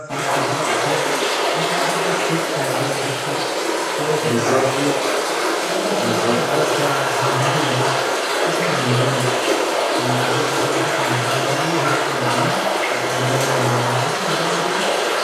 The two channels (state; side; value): identical; both; correlation 1.00